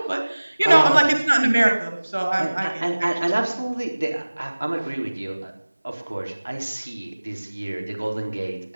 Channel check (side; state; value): both; inverted; correlation -1.00